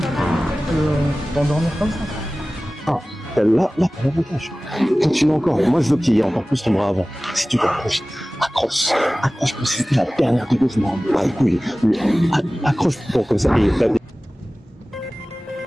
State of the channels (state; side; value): normal; both; correlation 0.97